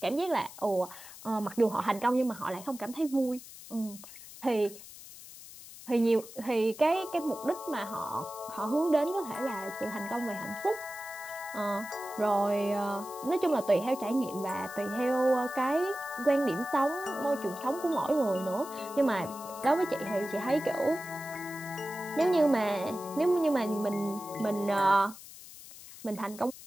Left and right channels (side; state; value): left; noise; hiss, 16 dB below the sound